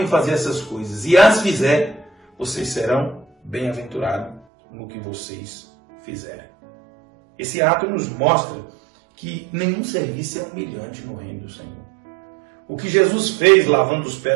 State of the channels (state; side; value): drops out; left; at 4.4 s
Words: fazer essas coisas e as fizer, vocês serão bem-aventurados no que vocês fizerem. Esse ato nos mostra que nenhum serviço é humilhante no reino do Senhor. O que Jesus fez lavando os